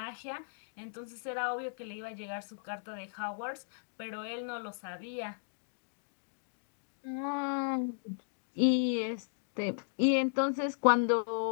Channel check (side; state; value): right; silent; digital silence